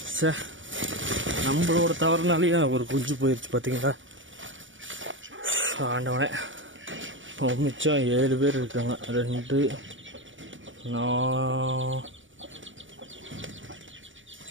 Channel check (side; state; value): left; late; 0.56 ms